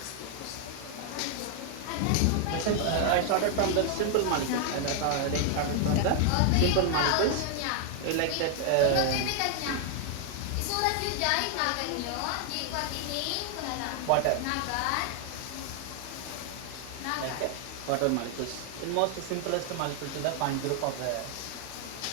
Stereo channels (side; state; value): both; different; correlation 0.00